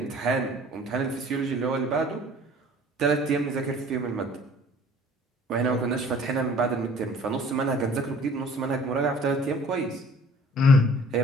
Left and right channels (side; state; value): both; normal; correlation 0.51